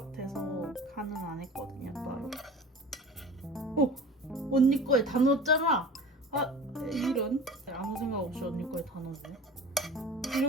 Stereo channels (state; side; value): normal; both; correlation 0.39